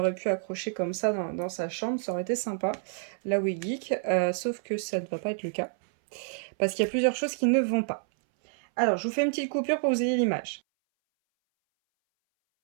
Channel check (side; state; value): left; silent; 59 dB below the other